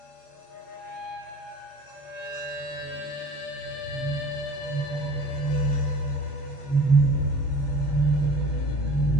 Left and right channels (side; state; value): right; late; 22 ms